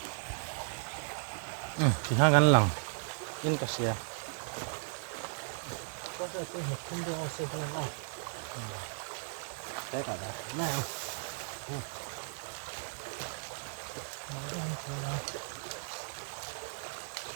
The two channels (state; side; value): silent; left; digital silence